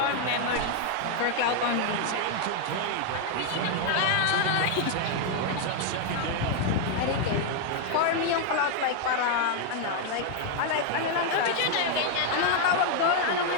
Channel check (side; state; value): both; different; correlation 0.00